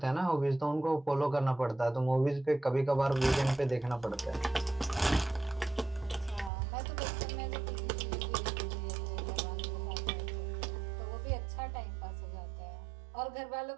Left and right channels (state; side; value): drops out; left; at 6.5 s